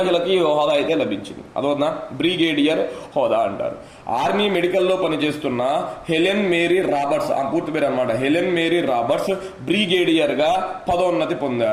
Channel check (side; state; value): both; identical; correlation 1.00